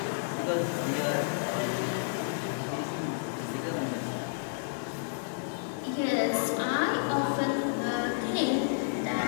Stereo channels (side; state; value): right; silent; digital silence